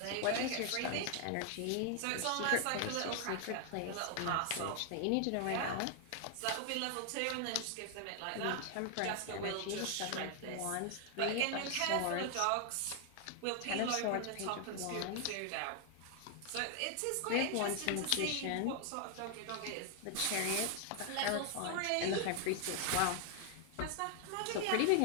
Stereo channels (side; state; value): both; different; correlation 0.00